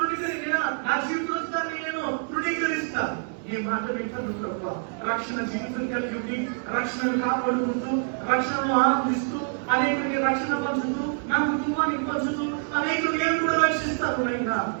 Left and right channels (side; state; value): left; silent; 61 dB below the other